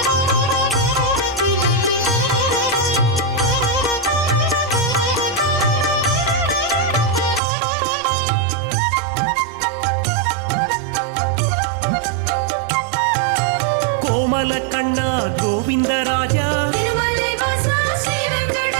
கோமல கண்ணா கோவிந்தராஜா,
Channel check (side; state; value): left; drops out; at 7.4 s